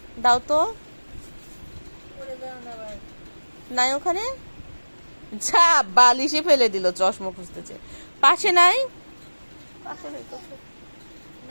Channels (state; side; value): inverted; both; correlation -1.00